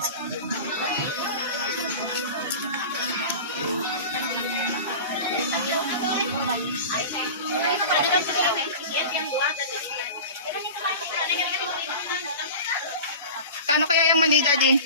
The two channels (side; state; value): both; inverted; correlation -0.33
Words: Kano kaya yung maliit, Daddy?